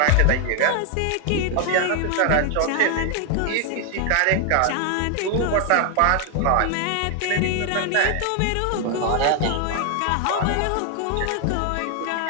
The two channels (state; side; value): different; both; correlation 0.00